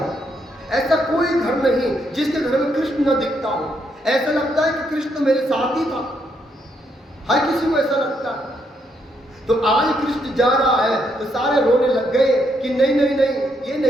ऐसा कोई घर नहीं जिसके घर में कृष्ण न दिखता हो। ऐसा लगता है कि कृष्ण मेरे साथ ही था, हर किसी को ऐसा लगता है। तो आज कृष्ण जा रहा है तो सारे रोने लग गए कि नहीं नहीं नहीं, ये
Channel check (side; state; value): both; normal; correlation 0.76